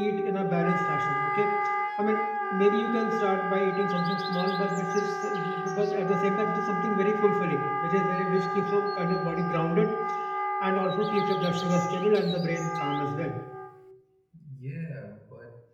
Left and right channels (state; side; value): identical; both; correlation 1.00